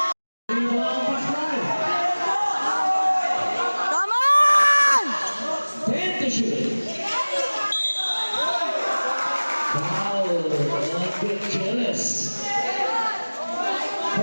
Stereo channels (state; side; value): inverted; both; correlation -1.00